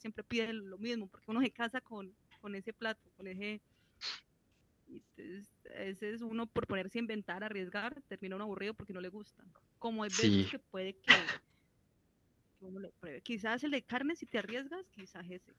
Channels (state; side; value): identical; both; correlation 1.00